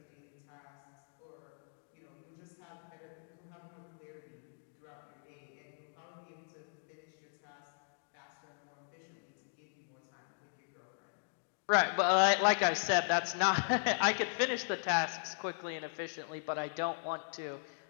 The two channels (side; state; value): right; silent; digital silence